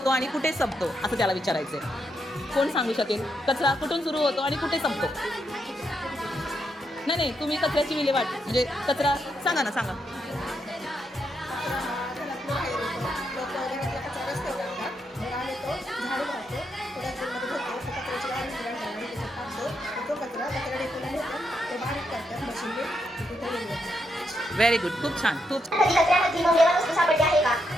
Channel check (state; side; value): normal; both; correlation 0.80